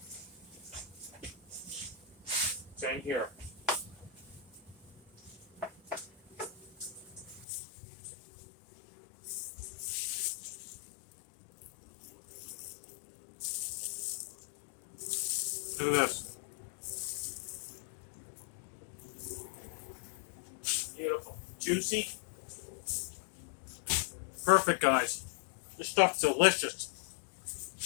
Same here. Look at this. Beautiful. Juicy. Perfect, guys. This stuff's delicious.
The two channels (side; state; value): right; drops out; at 7.5 s